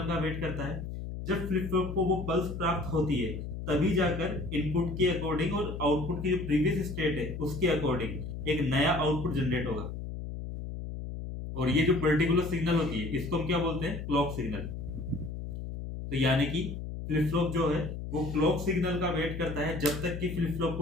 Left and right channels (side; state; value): left; noise; hum, 7 dB below the sound